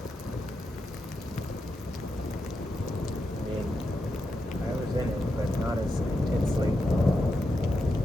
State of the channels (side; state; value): both; normal; correlation 0.86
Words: I mean, I was in it, but not as intensely